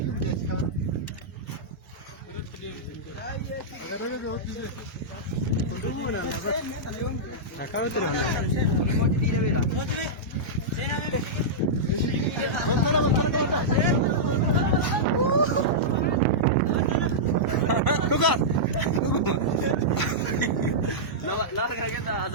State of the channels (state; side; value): normal; both; correlation -0.12